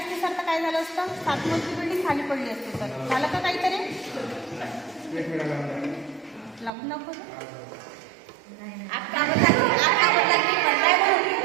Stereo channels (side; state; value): left; drops out; at 6.7 s